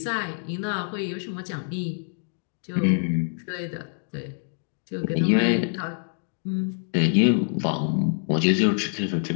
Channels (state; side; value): silent; right; digital silence